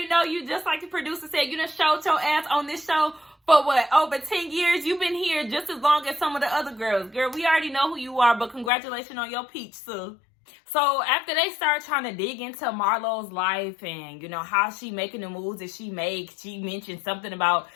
know you, just like the producer said. You done showed your ass on this show for what, over 10 years? You've been here just as long as some of the other girls. Girl, we already know who you are, but congratulations on your peach, Sue. So after they start trying to dig into Marlo's life and, how she making the moves that she makes, she mentioned something about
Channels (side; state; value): right; drops out; at 8.7 s